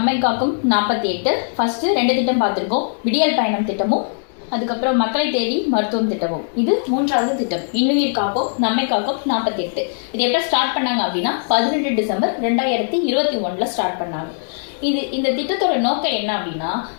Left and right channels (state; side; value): silent; right; 65 dB below the other